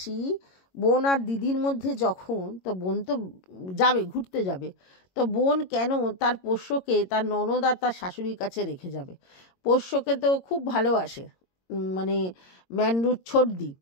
বোন আর দিদির মধ্যে যখন, তো বোন তো যাবে ঘুরতে যাবে, তো বোন কেন তার পোষ্যকে তার ননদ আর তার শাশুড়ির কাছে রেখে যাবে? পোষ্যকে তো খুব ভালোবাসে মানে ম্যান্ডুর ছোটদি,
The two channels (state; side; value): late; right; 22 ms